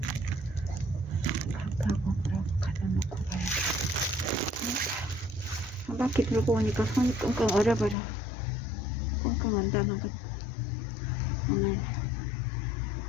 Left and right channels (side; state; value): right; drops out; at 8.0 s